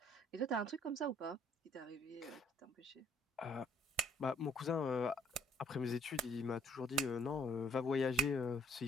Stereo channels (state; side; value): normal; both; correlation 0.64